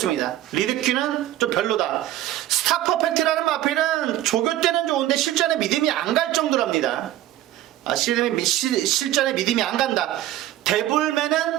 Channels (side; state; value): left; quieter; 13.9 dB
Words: 리드큐는 좀 별로다. 스타 퍼펙트라는 마필은 조교 때는 좋은데 실전에 믿음이 안 갈 정도랍니다. 실전에 믿음이 안 간다.